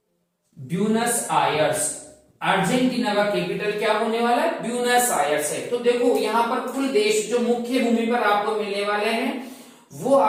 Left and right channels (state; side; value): identical; both; correlation 1.00